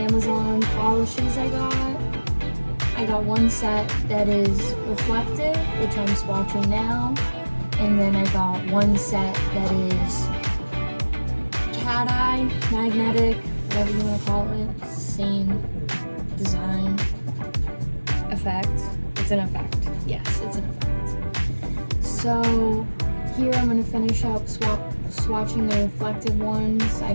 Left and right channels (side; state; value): both; inverted; correlation -1.00